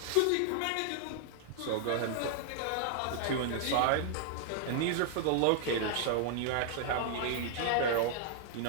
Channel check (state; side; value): different; both; correlation 0.00